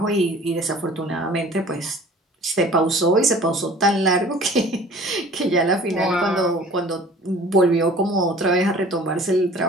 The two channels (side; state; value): both; normal; correlation 0.47